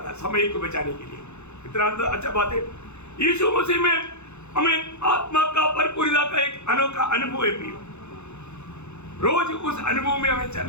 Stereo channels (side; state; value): right; late; 0.82 ms